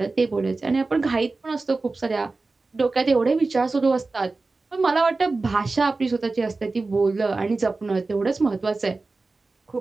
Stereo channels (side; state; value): left; quieter; 3.6 dB